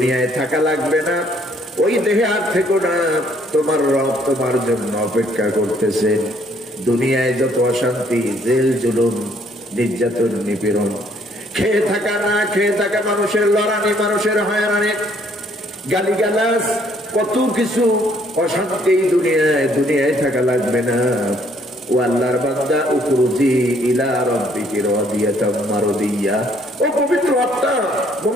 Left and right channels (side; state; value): both; normal; correlation 0.65